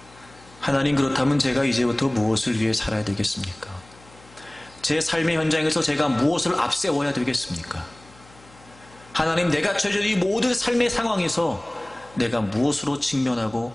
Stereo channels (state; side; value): noise; left; hum, 25 dB below the sound